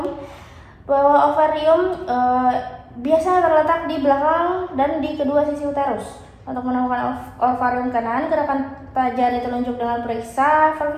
Bahwa ovarium biasa terletak di belakang dan di kedua sisi uterus. Untuk menemukan ovarium kanan, gerakan jari telunjuk dengan periksa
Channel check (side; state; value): both; identical; correlation 1.00